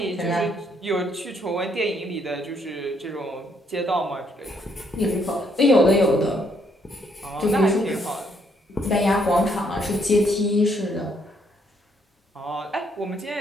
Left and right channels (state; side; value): normal; both; correlation 0.71